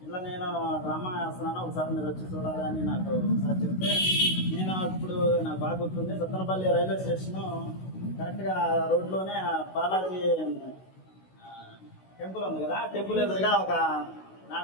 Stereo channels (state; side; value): late; right; 16 ms